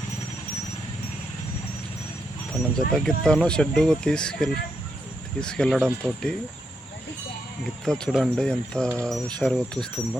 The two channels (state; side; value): normal; both; correlation 0.81